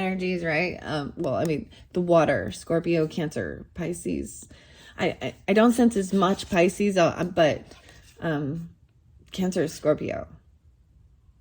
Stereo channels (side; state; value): both; identical; correlation 1.00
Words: right? The water, Scorpio, Cancer, Pisces. I don't sense as much Pisces, but Cancer, Scorpio.